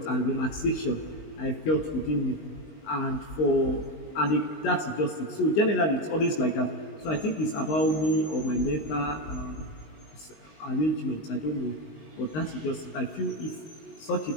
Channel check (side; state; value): right; late; 19 ms